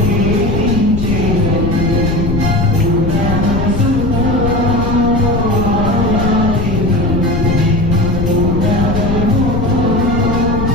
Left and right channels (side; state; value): left; noise; rumble, 3 dB below the sound